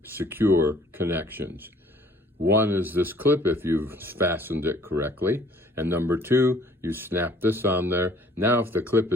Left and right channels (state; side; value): normal; both; correlation 0.57